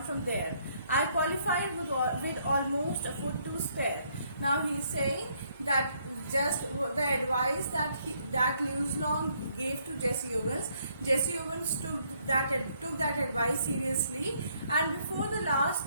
from there. I qualified with almost a foot to spare. Now he is saying that just the advice that Lewis Long gave to Jesse Owens took that advice seriously, and before the last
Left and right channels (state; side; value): inverted; both; correlation -0.69